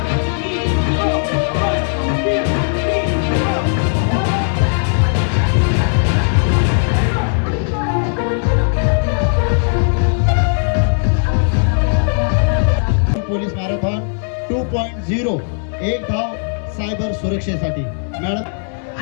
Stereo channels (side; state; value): right; silent; digital silence